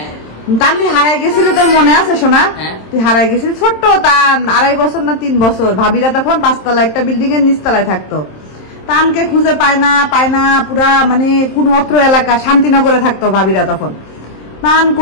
তানভি হারাই গেছিল, তোর মনে আছে সোনা? তুই হারাই গেছিলি ছোট্ট তান, 2.5 বছর না 3 বছর। ভাবিরা তখন 5 তলা একটা বিল্ডিং এর নিচতলায় থাকতো। তানকে খুঁজে পায় না, পুরা মানে কোন অত্র এলাকা শান্তিনগরে থাকতো ভাবিরা তখন। তান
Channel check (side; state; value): right; late; 27 ms